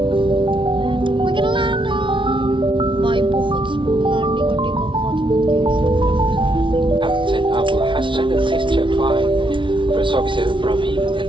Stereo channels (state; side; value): late; left; 0.24 ms